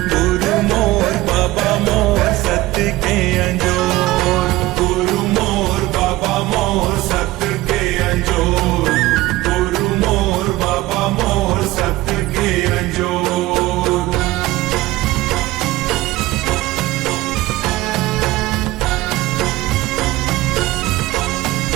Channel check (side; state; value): left; quieter; 18.2 dB